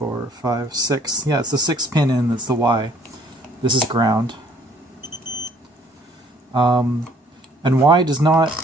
5, 6. Yeah, it's the sixth pin in, that's the Y. This is ground. And Y does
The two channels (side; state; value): both; normal; correlation 0.61